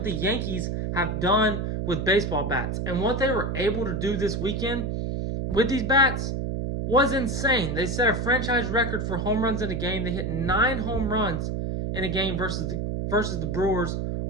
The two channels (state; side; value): noise; right; hum, 2 dB below the sound